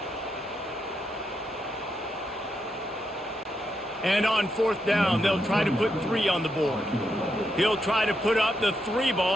And on 4th down, they'll try to put 3 on the board. He'll try to put up the 3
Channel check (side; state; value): both; normal; correlation 0.82